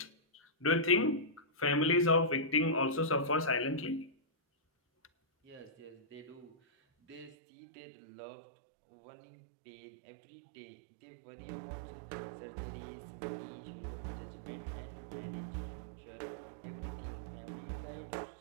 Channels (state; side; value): drops out; left; at 7.4 s